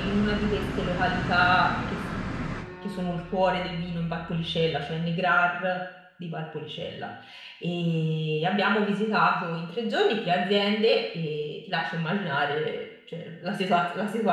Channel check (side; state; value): both; identical; correlation 1.00